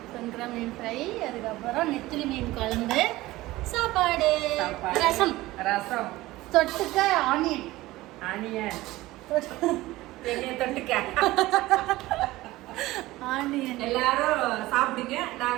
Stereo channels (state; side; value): quieter; left; 18.1 dB